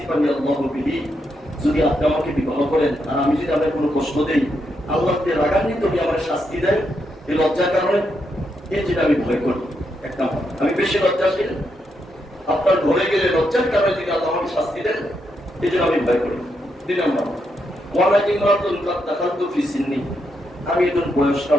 আল্লাহু বিহি, যদি আপনি আমাকে বিবাহ করেন আর আমি যদি আপনাকে কোনো কষ্ট দেই, আল্লাহ তে রাগান্বিত হয়ে আমার শাস্তি দেয় এই লজ্জার কারণে, এই যেটা আমি ভয় করি। এক নম্বর, আমি বেশি লজ্জাশীল, আপনার ঘরে গেলে লজ্জার কারণে যদি আল্লাহ আমাকে শাস্তি দেন এই জন্য আমি ভয় করি। 2 নম্বর, ওয়ালা ইমরাতুন কাদ দাখালতু ফি সিন্নি, আমি একজন বয়স্ক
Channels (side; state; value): both; normal; correlation 0.81